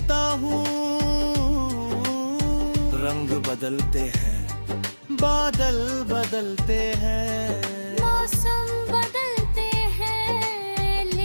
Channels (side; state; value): both; inverted; correlation -1.00